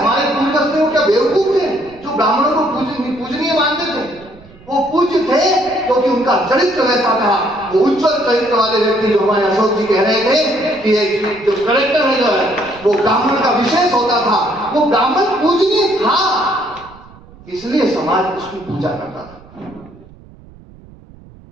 पूर्वज थे वो क्या बेवकूफ थे जो ब्राह्मणों को पूजनीय मानते थे? वो पूज्य थे क्योंकि उनका चरित्र वैसा था। वो उज्जवल चरित्र वाले व्यक्ति जो हमारे अशोक जी कह रहे थे कि जो करेक्टर है जो है वो ब्राह्मण का विशेष होता था, वो ब्राह्मण पूजनीय था, इसलिए समाज उसकी पूजा करता था।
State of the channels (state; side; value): noise; right; rumble, 23 dB below the sound